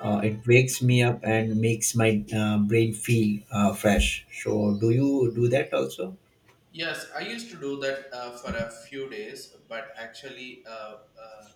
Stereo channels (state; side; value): identical; both; correlation 1.00